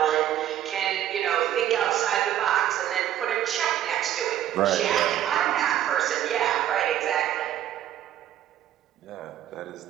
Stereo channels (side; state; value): left; quieter; 11.7 dB